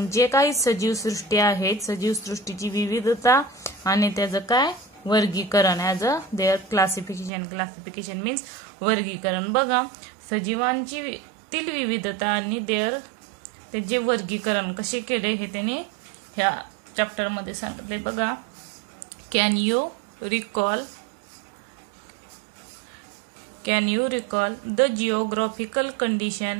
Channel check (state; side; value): drops out; left; at 7.3 s